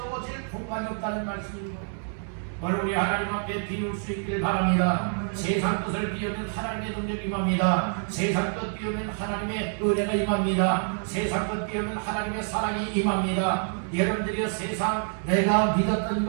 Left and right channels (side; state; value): left; silent; 56 dB below the other